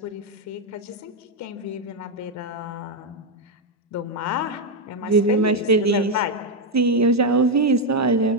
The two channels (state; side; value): normal; both; correlation 0.03